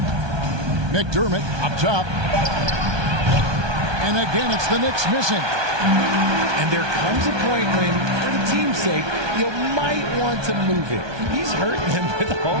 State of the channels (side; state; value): left; late; 1.2 ms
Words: McDermott up top. And again, it's the Knicks missing. And there comes a point when, for the team's sake, you might want to move it. He's hurting them with all